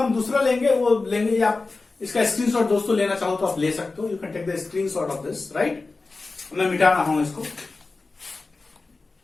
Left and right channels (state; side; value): quieter; right; 3.7 dB